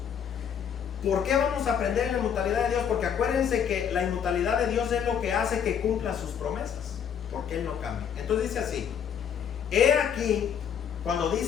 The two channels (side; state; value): right; quieter; 8.1 dB